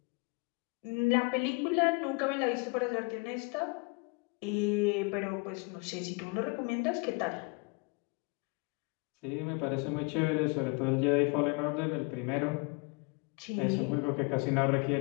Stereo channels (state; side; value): quieter; right; 30.5 dB